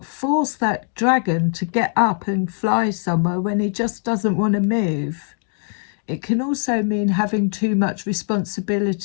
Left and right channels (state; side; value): silent; right; 57 dB below the other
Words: force that dragon to get up and fly somewhere when he just doesn't want to move. It can also mean having too much